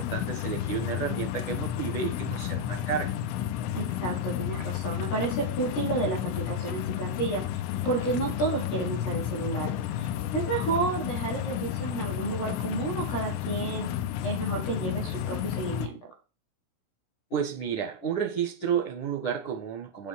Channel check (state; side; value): late; right; 17 ms